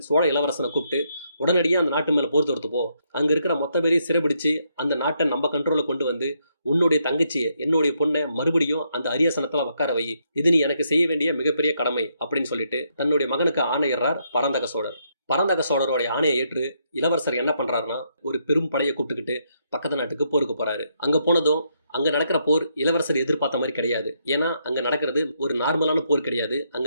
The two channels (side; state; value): both; inverted; correlation -0.76